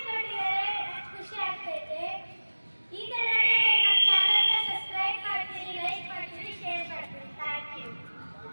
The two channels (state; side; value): inverted; both; correlation -1.00